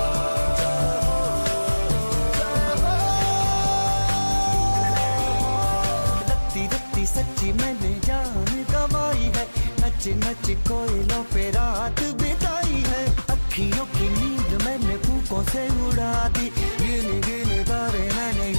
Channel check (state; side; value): inverted; both; correlation -1.00